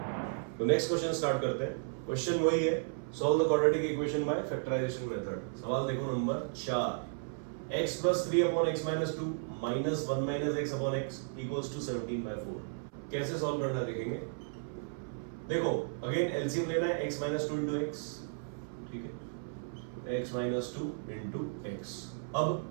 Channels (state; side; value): silent; left; 55 dB below the other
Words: तो नेक्स्ट क्वेश्चन स्टार्ट करते हैं. क्वेश्चन वही है, solve the quadratic equation by factorisation method. सवाल देखो नंबर 4. x plus 3 upon x minus 2 minus 1 minus x upon x equals to 17 by 4. कैसे सॉल्व करना देखेंगे. देखो अगेन एलसीएम लेना है x minus 2 into x. ठीक है, x minus 2 into x. अब